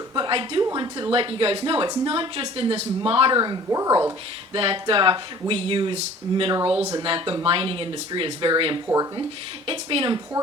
But I do want to let you guys know it's not just in this modern world that we use minerals and that the mining industry is very important. It's been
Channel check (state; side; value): normal; both; correlation 0.49